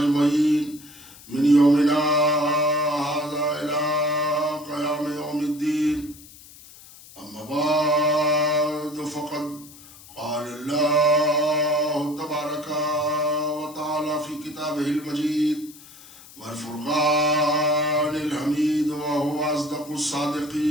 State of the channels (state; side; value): noise; left; hiss, 20 dB below the sound